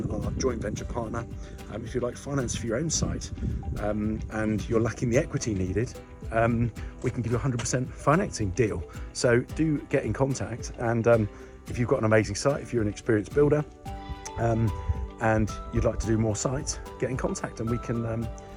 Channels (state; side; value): identical; both; correlation 1.00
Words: our joint venture partner. If you'd like finance for your own site and you're lacking the equity needed, we can give you a 100% financing deal. So do get in contact, and if you've got an amazing site, if you're an experienced builder, and you'd like to do more sites, get in contact and we can